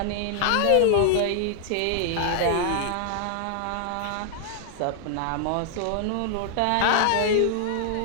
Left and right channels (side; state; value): both; different; correlation -0.01